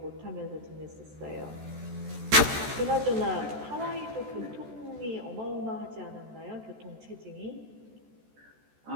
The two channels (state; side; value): late; left; 14 ms